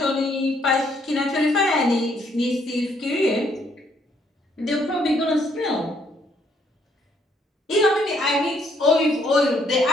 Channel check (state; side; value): normal; both; correlation 0.69